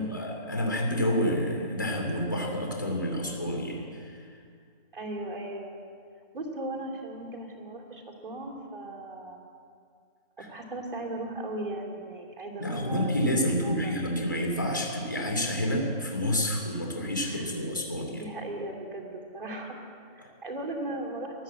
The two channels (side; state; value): both; inverted; correlation -0.38